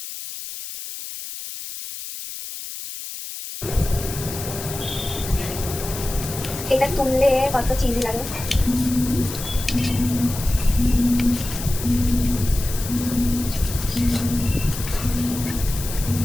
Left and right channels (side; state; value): left; noise; hiss, 9 dB below the sound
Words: এটা তুললে কত চিজ লাগে।